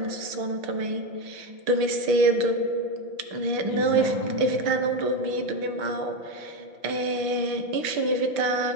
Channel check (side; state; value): left; late; 5.9 ms